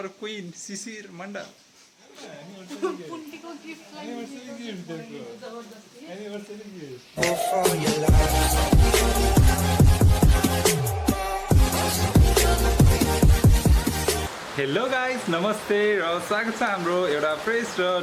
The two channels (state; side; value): identical; both; correlation 1.00